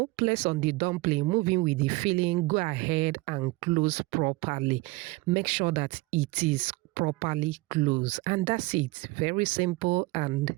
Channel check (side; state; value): left; quieter; 22.4 dB